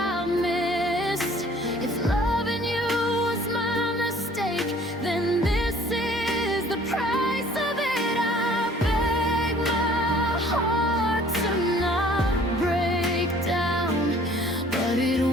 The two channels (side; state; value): both; normal; correlation 0.54